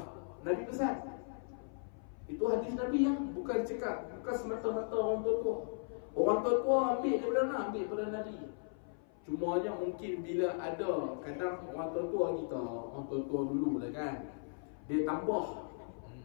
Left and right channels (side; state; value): right; silent; 53 dB below the other